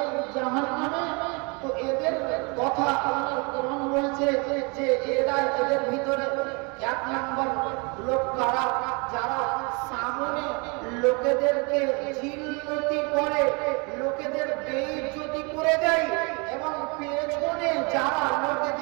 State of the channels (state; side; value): quieter; left; 31.1 dB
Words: জাহান্নামে? তো এদের কথা আল্লাহর কোরআন বলছে যে এরা, এদের ভিতরে এক নম্বর লোক কারা, যারা সামনে লোকেদেরকে জিল্লতি করে, লোকেদের বেইজ্জতি করে দেয়, এবং পেছনে যারা